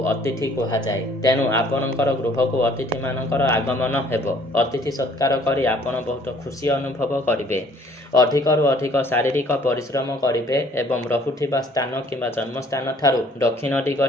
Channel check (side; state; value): both; normal; correlation 0.58